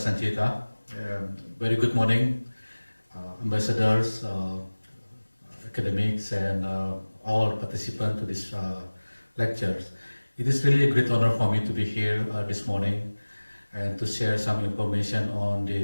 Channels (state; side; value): inverted; both; correlation -1.00